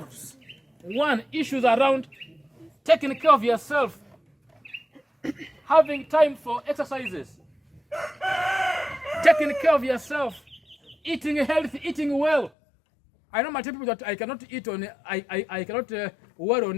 one, issues around taking care of yourself, having time for exercises, taking care of yourself, eating healthy, eating well. I know my people that I cannot eat on, I cannot wear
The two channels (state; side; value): drops out; right; at 12.5 s